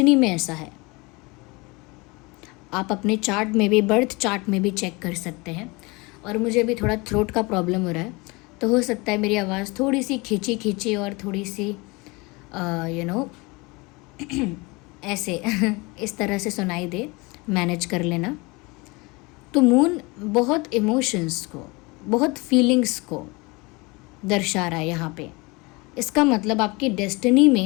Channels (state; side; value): quieter; right; 25.7 dB